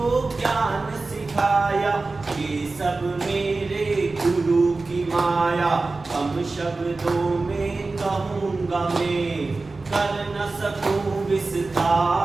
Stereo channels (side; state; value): left; quieter; 3.6 dB